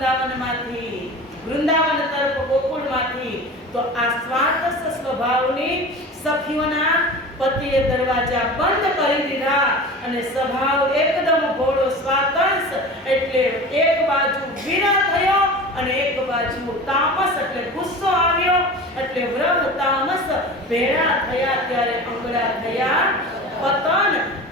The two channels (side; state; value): both; normal; correlation 0.35